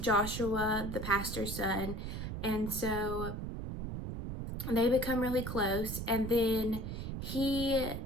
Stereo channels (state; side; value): noise; right; rumble, 5 dB below the sound